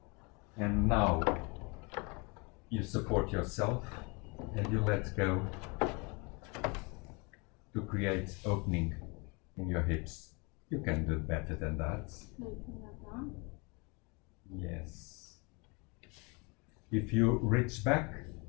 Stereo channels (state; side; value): quieter; right; 29.9 dB